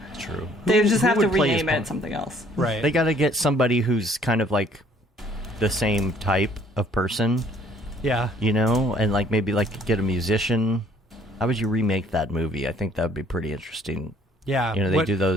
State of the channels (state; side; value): normal; both; correlation 0.60